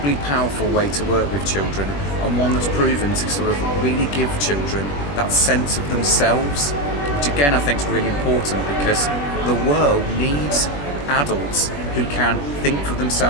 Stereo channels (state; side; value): late; right; 21 ms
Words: powerful way to work with children, and one that's proven to sort of really give children that sense of themselves, which again I think is really important, because the world needs adults who can think for